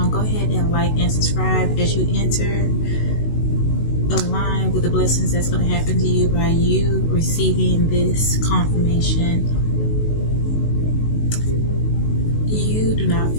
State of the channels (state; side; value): late; right; 19 ms